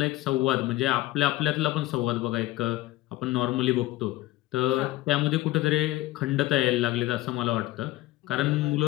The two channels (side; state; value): right; quieter; 17.1 dB